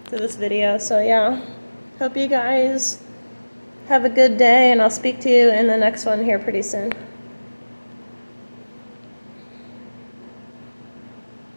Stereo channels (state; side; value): inverted; both; correlation -1.00